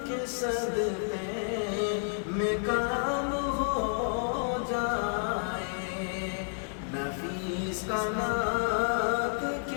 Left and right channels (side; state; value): right; silent; digital silence